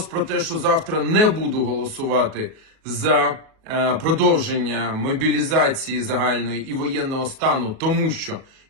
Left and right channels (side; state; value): left; late; 37 ms